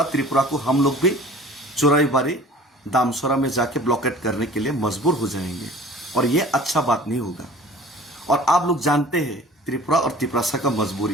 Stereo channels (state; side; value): normal; both; correlation 0.45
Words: त्रिपुरा को हम लोग भी चुराईबारी, दामसरा में जाके ब्लॉकेट करने के लिए मजबूर हो जाएंगे। और ये अच्छा बात नहीं होगा। और आप लोग जानते हैं त्रिपुरा और तिपरासा का